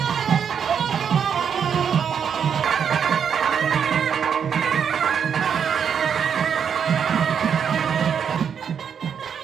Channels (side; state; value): left; quieter; 7.5 dB